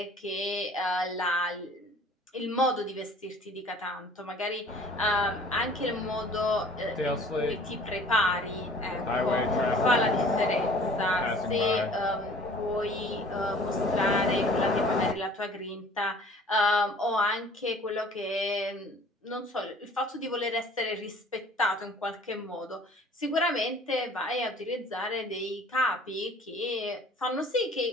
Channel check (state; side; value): normal; both; correlation 0.50